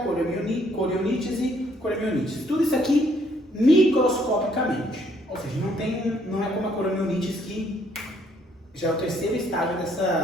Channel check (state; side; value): normal; both; correlation 0.67